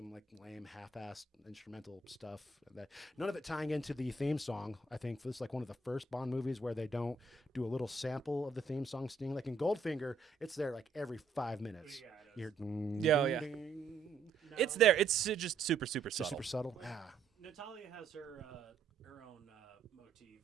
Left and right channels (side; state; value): left; quieter; 4.4 dB